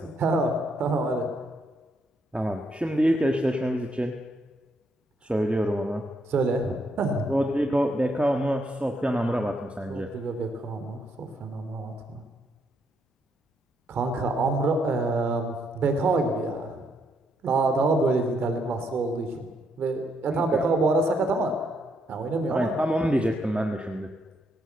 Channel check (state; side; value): normal; both; correlation 0.75